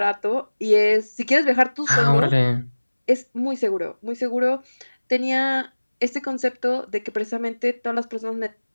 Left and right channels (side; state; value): both; inverted; correlation -1.00